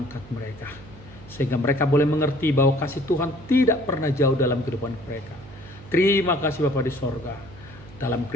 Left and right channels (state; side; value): noise; right; hum, 19 dB below the sound